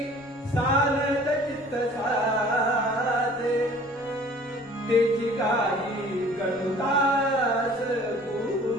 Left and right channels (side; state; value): left; noise; rumble, 28 dB below the sound